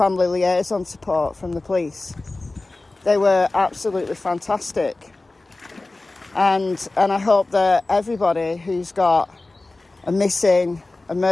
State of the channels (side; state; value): right; quieter; 3.1 dB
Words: liaison support from the police. They were absolutely fantastic. And I hope that everybody who's got a missing, a